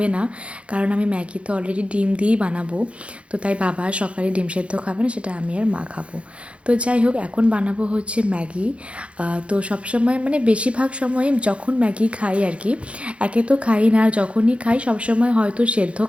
না, কারণ আমি ম্যাগি তো অলরেডি ডিম দিয়েই বানাবো। তো তাই বাবা সকালে ডিম সিদ্ধ খাবে না, সেটা আমি আর মা খাবো। তো যাই হোক, এখন বানাবো হচ্ছে ম্যাগি। তো সবসময় মানে বেশিরভাগ সময় যখন ম্যাগি খাই আর কি, একে তো খাই না, যখনই খাই সবসময় হয়তো সেদ্ধ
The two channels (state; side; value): late; left; 0.061 ms